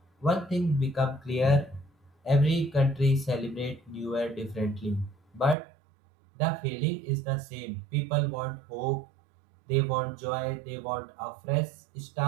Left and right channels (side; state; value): left; drops out; at 5.6 s